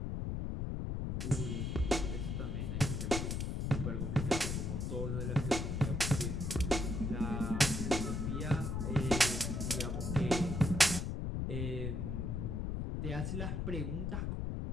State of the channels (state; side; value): noise; left; rumble, 1 dB below the sound